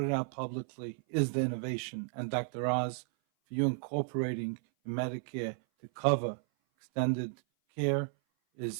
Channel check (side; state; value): left; silent; 55 dB below the other